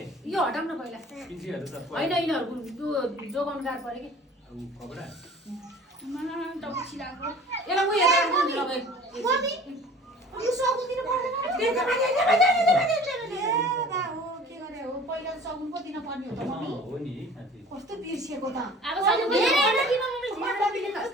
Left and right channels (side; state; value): both; normal; correlation 0.46